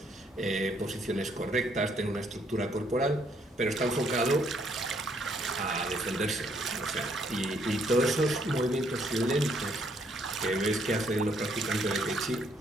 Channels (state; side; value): normal; both; correlation 0.69